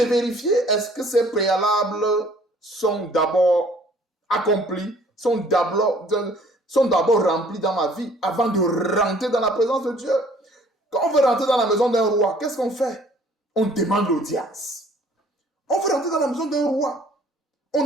vérifier, est-ce que ces préalables sont d'abord accomplis, sont d'abord remplis dans ma vie avant de rentrer dans la présence de Dieu. Quand on veut rentrer dans la maison d'un roi, qu'est-ce qu'on fait? On demande l'audience. On veut rentrer dans la maison d'un roi. On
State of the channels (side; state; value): both; normal; correlation 0.56